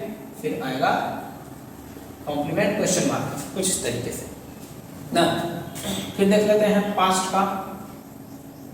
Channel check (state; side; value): identical; both; correlation 1.00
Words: फिर आएगा कॉम्प्लीमेंट क्वेश्चन मार्क, कुछ इस तरीके से ना। फिर देख लेते हैं पास्ट का।